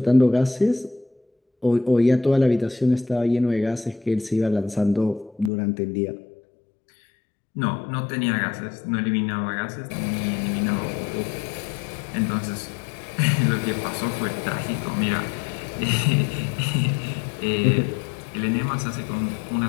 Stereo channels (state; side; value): drops out; right; at 5.5 s